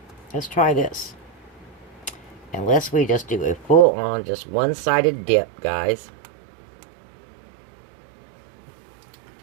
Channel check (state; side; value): drops out; left; at 3.9 s